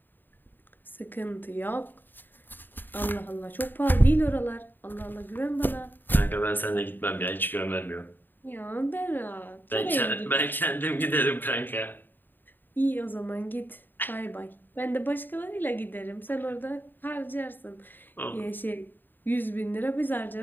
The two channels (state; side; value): late; right; 0.092 ms